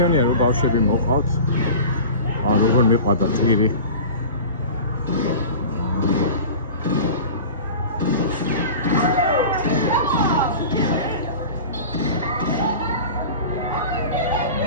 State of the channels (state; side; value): inverted; both; correlation -0.35